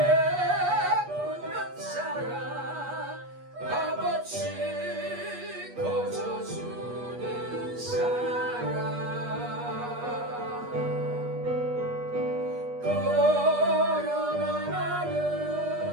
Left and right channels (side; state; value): left; late; 8.3 ms